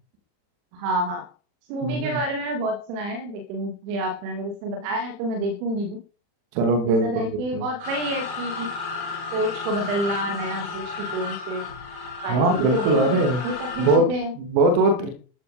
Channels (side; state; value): left; late; 40 ms